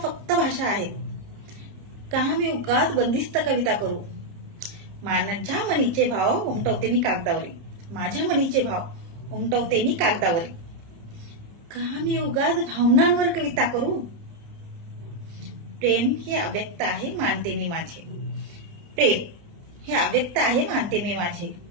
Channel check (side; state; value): left; late; 30 ms